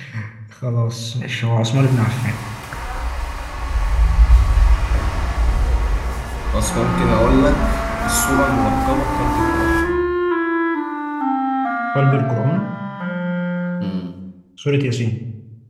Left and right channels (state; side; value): identical; both; correlation 1.00